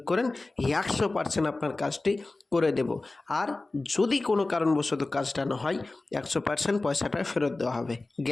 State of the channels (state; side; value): quieter; right; 3.2 dB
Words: করেন, 100% আপনার কাজটি করে দেব। আর যদি কোনো কারণবশত কাজটা না হয়, 100% পয়সাটা ফেরত দেওয়া হবে,